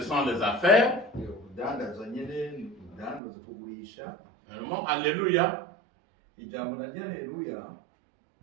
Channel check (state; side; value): drops out; left; at 3.2 s